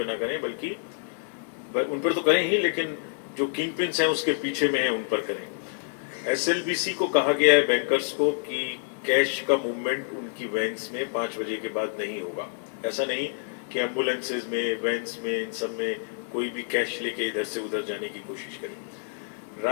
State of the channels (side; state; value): right; silent; 60 dB below the other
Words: ना करें, बल्कि उन पर तो करें ही, लेकिन जो किंग पिन्स हैं उसके पीछे में हैं उन पर करें। एसएलबीसी को कहा गया है बैंकर्स को कि कैश का मूवमेंट उनकी वैन्स में 5 बजे के बाद नहीं होगा। ऐसा नहीं कि एम्बुलेंसेज में, वैन्स में, इन सब में कोई भी कैश लेके इधर से उधर जाने की कोशिश करें।